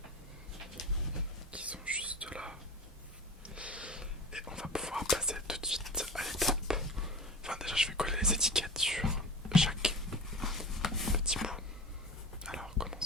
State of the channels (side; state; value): both; normal; correlation 0.31